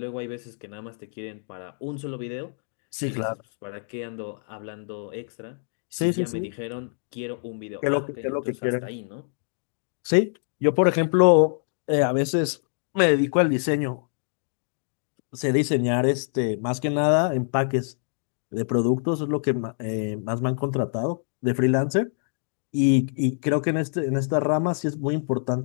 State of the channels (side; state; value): right; silent; 59 dB below the other